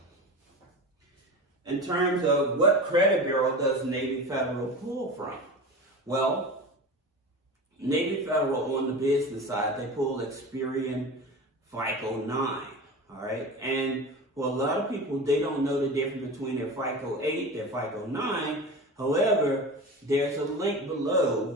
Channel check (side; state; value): both; normal; correlation 0.30